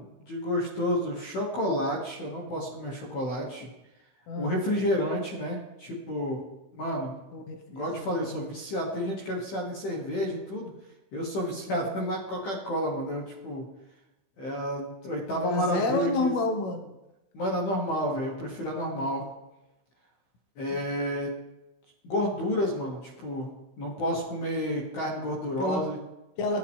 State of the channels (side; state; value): right; late; 15 ms